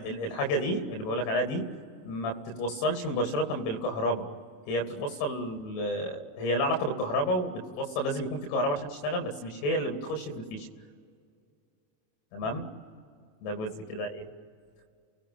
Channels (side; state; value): right; late; 28 ms